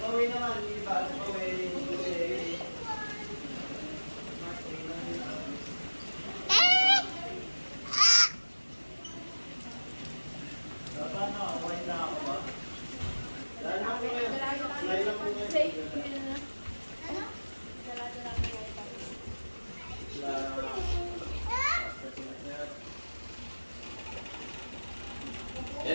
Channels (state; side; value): inverted; both; correlation -1.00